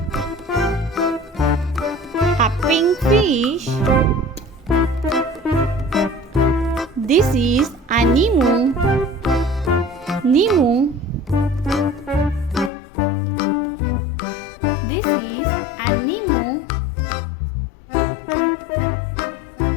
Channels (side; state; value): right; drops out; at 12.7 s